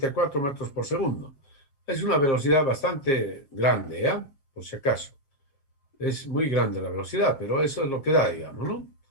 metros por segundo. Es una velocidad bastante grande, ¿ya? Por si acaso. Es muy grande la velocidad, pero eso es lo que da, digamos, ¿no?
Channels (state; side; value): late; right; 7.4 ms